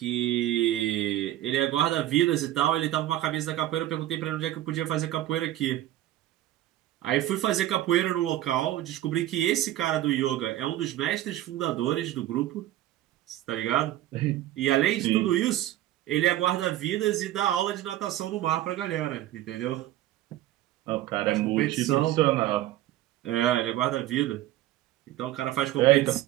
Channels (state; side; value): quieter; left; 14.1 dB